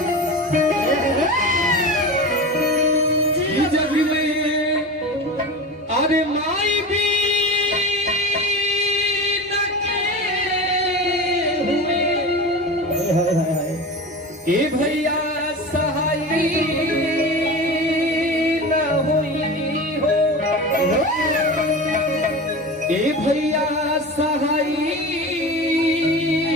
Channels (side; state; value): both; normal; correlation 0.29